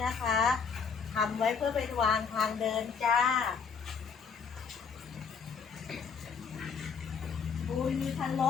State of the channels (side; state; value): right; quieter; 6.0 dB